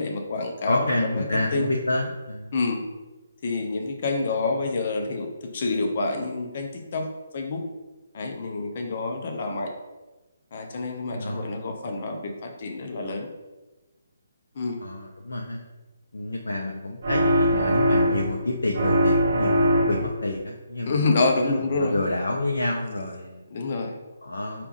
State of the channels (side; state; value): both; inverted; correlation -0.76